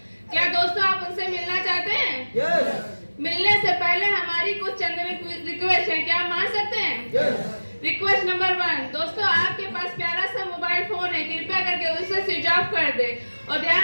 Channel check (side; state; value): both; inverted; correlation -1.00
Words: क्या दोस्तों आप उनसे मिलना चाहते हैं? yes. मिलने से पहले हमारी कुछ चंद रिक्वेस्ट है, क्या आप मान सकते हैं? yes. रिक्वेस्ट नंबर 1, दोस्तों आपके पास प्यारा सा मोबाइल फोन है, कृपया करके उसे स्विच ऑफ कर दे और